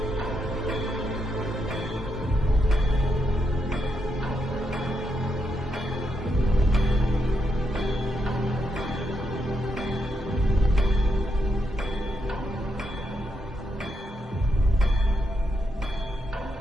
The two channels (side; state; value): both; normal; correlation 0.81